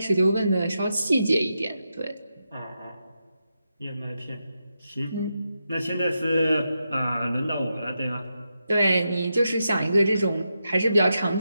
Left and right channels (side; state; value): both; inverted; correlation -0.86